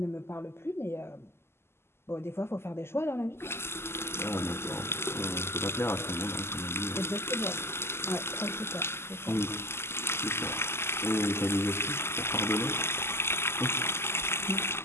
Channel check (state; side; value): late; right; 0.12 ms